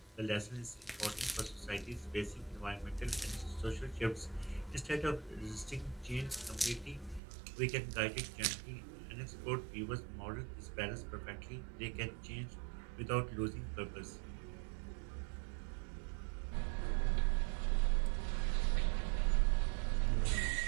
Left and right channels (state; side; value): drops out; left; at 7.2 s